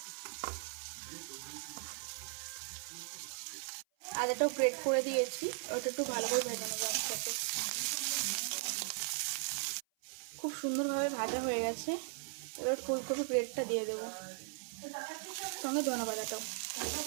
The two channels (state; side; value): silent; left; 52 dB below the other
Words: আদাটাও গ্রেট করে দিয়েছি, ওটা একটু ভালো করে ভেজে নেবো একসাথে। খুব সুন্দরভাবে ভাজা হয়ে গেছে। এবার ফুলকপি গ্রেটটা দিয়ে দেবো, সঙ্গে ধনে পাতাটাও